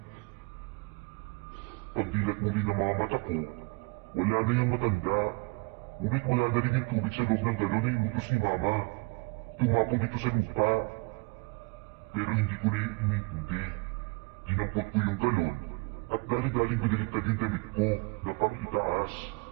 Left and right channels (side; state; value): left; quieter; 28.6 dB